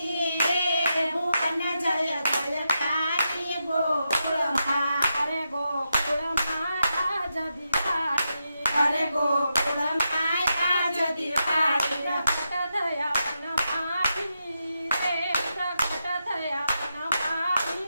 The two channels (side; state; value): both; inverted; correlation -0.86